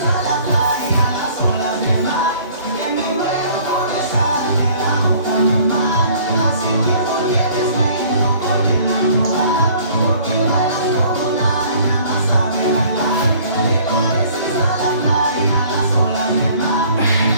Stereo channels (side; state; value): both; inverted; correlation -0.54